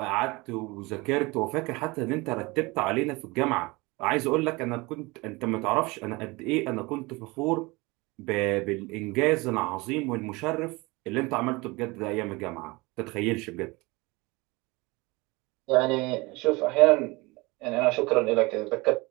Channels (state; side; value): quieter; left; 24.0 dB